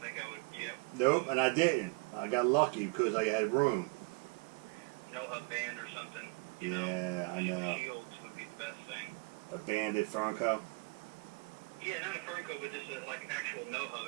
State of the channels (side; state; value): left; quieter; 29.2 dB